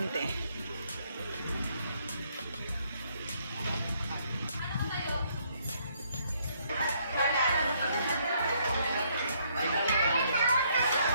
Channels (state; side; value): inverted; both; correlation -0.69